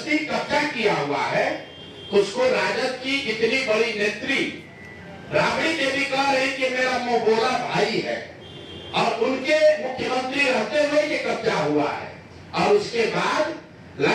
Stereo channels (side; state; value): both; identical; correlation 1.00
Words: कब्जा किया हुआ है। उसको राजद की इतनी बड़ी नेत्री राबड़ी देवी कह रही कि मेरा मुंह बोला भाई है, और उनके मुख्यमंत्री रहते हुए ये कब्जा हुआ है, और उसके बाद